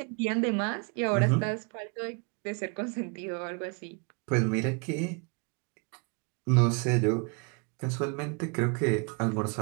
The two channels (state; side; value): quieter; left; 35.0 dB